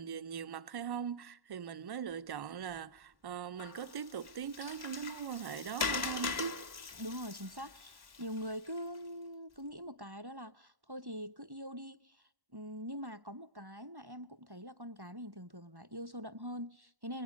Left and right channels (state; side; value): late; left; 1.1 ms